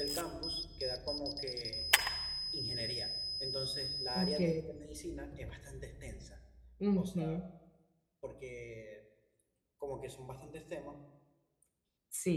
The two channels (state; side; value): identical; both; correlation 1.00